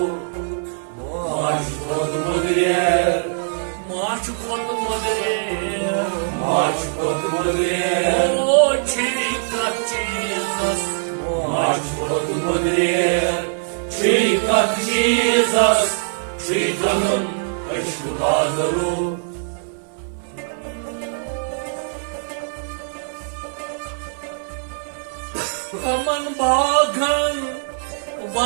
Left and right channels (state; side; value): silent; left; 62 dB below the other